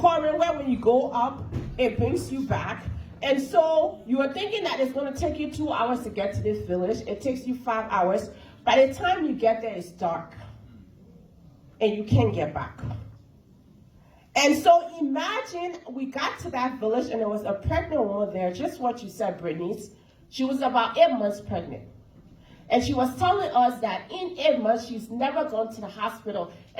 where when you go up, it brings you back. And so you are thinking that it's going to take you 2 hours to get to this village. It takes you 5 hours. By the time you get there, it's dark. And you can't get back. And so imagine we got to that village and there was a pregnant woman there, just what you said, Brittany. She was about 8 months pregnant. And she was telling us that in 8 months, she's never gone to the hospital.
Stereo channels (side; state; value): both; identical; correlation 1.00